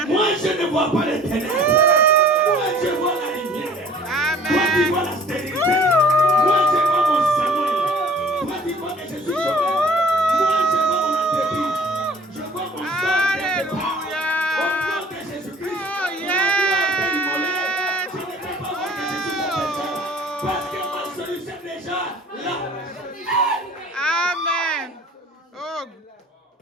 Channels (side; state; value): both; normal; correlation 0.50